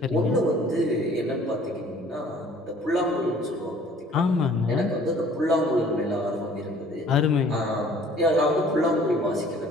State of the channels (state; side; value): normal; both; correlation 0.54